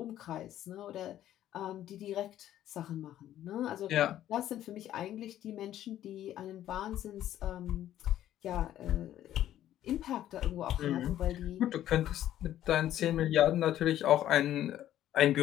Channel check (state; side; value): quieter; right; 12.3 dB